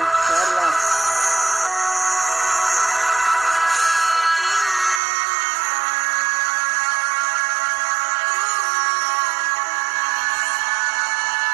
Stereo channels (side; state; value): left; drops out; at 5.0 s